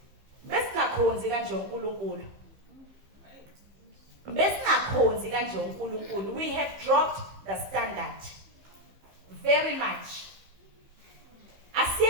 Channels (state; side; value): late; left; 15 ms